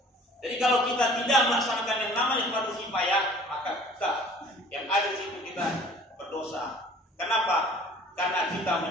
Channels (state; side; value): normal; both; correlation 0.50